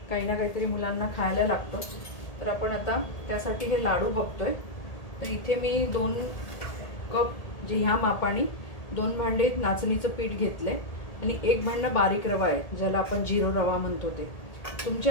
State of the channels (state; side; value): late; right; 1.8 ms